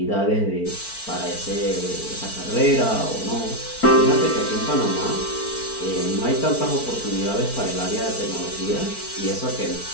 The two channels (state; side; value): late; right; 4.5 ms